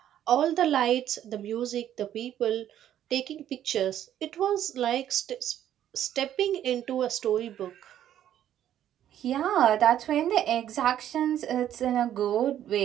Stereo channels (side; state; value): left; quieter; 11.1 dB